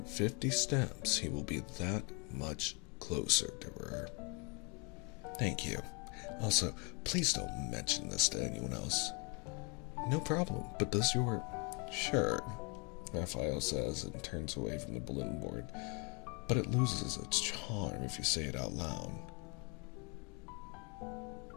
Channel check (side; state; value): right; quieter; 32.8 dB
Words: 50 steps, he will be that much closer to her. Thank you. Also, please don't mention this to anyone else. No problem, but does your... Sure, Raphael says and turns away from the balloon board, but it loses its charm if you say it out loud.